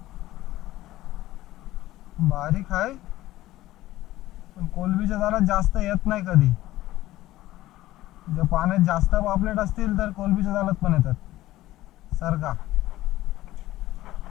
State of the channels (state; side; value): quieter; right; 15.9 dB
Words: बारीक आहे पण कोलबीच्या जाळात जास्त येत नाही कधी. जर पाण्यात जास्त पापलेट असतील तर कोलबीच्या जाळात पण येतात सर्गा.